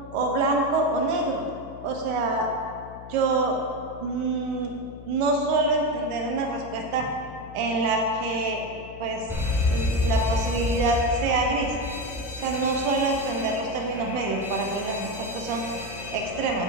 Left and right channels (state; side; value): noise; left; hum, 15 dB below the sound